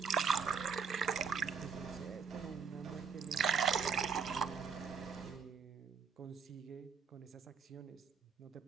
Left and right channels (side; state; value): left; quieter; 5.8 dB